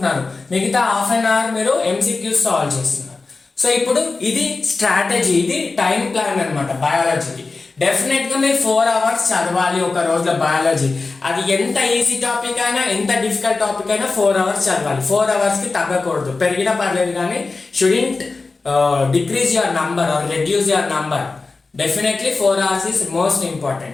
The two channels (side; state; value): right; quieter; 3.9 dB